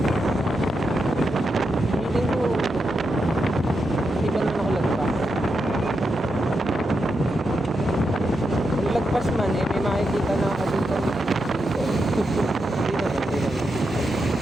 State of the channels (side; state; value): both; normal; correlation 0.85